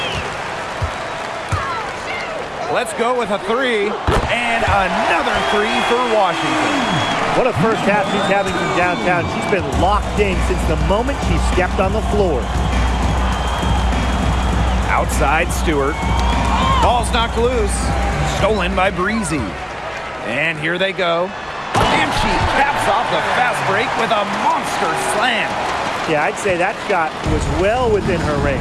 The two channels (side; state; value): both; identical; correlation 1.00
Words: Let's go with a 3, and another 3 for Washington. What a first half she's having from downtown. She's been locked in since the moment she stepped on the floor. Outside Stewart. Ball's knocked loose. Stolen by Breezy. And here they go. And she caps off the fast break with a monster slam. Yeah, I'd say that shot was well within her